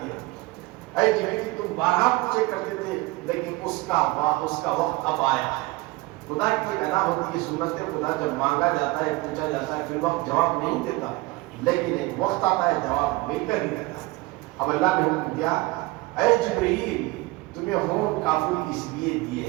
ہے۔ اے جبریل تم بارہا پوچھے کرتے تھے، لیکن اس کا وقت اب آیا ہے۔ خدا کی ایک ادا ہوتی ہے، سنت خدا جب مانگا جاتا ہے، پوچھا جاتا ہے، پھر وقت جواب نہیں دیتا، لیکن ایک وقت آتا ہے جواب مل کر ہی رہتا ہے۔ اب اللہ نے حکم دیا، اے جبریل تمہیں ہونٹ کافور اس لیے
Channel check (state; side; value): quieter; left; 21.5 dB